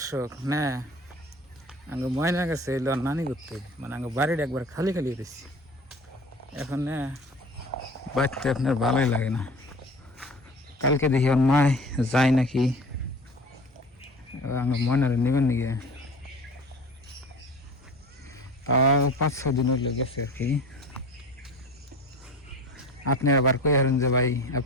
না আগে ময়না গেছে এলো নানি করতে, মানে আগে বাড়িটা একবার খালি খালি হয়েছি। এখন না বাড়তে আপনার ভালোই লাগে না। কালকে দেখি ওর মায় যায় নাকি, আগে ময়নারে নেবেন নাকি, তাও 5-6 দিন হইলে গেছে আর কি। আপনি আবার কই হারেন যে ভাই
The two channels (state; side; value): normal; both; correlation 0.39